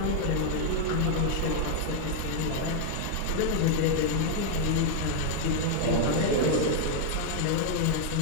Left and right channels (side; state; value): both; different; correlation 0.00